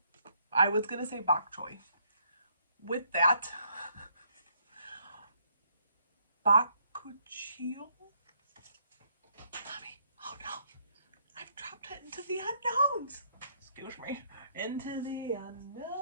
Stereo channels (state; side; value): inverted; both; correlation -0.70